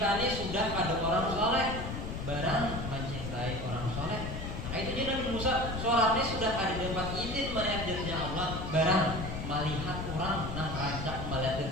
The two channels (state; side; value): noise; left; rumble, 5 dB below the sound